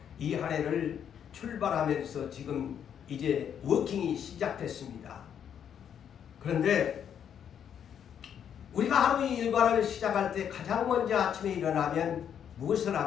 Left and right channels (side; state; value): right; quieter; 8.7 dB